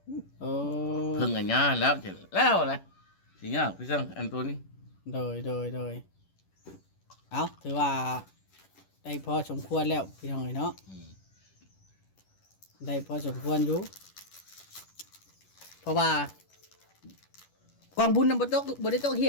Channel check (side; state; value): right; late; 10 ms